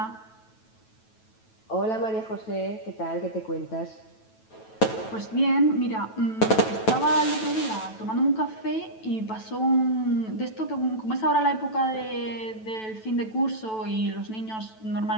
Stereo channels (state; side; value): late; right; 9.1 ms